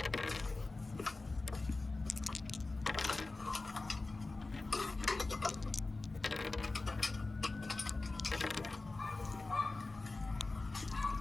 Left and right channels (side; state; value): right; quieter; 3.4 dB